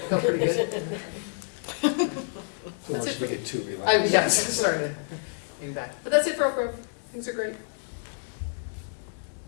pretty good. Once we get too relaxed. Yes, starting to getting back. But that's it for Oak Grove. Things are great.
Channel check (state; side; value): silent; right; digital silence